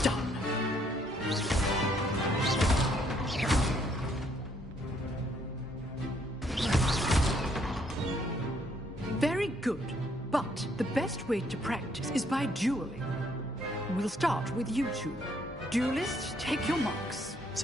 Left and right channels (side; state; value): both; normal; correlation 0.68